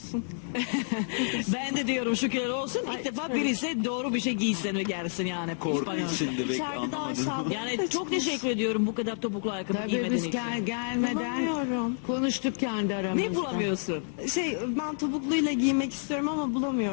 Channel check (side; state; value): right; silent; 58 dB below the other